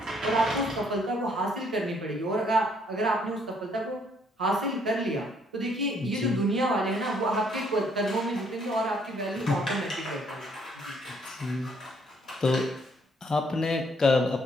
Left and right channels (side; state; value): both; normal; correlation 0.67